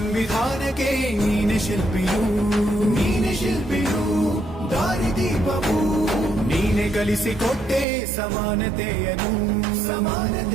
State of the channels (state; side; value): drops out; left; at 7.9 s